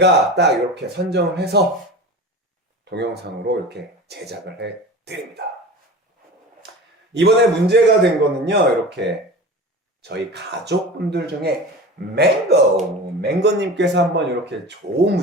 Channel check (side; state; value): both; normal; correlation 0.33